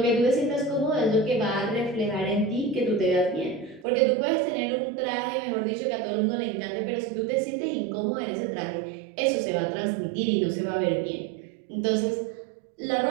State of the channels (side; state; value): left; drops out; at 3.9 s